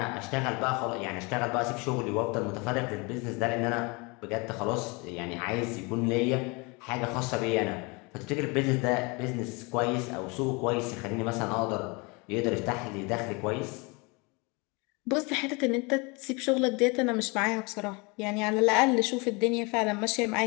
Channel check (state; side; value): quieter; right; 28.5 dB